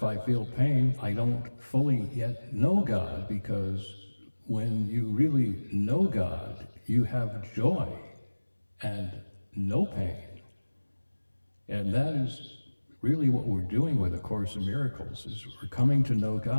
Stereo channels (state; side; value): inverted; both; correlation -1.00